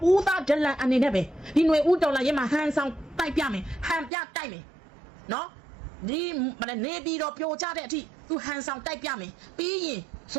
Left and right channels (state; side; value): drops out; left; at 4.1 s